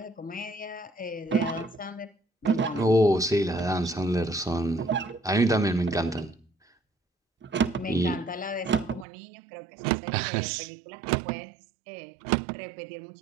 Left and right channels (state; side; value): drops out; left; at 9.1 s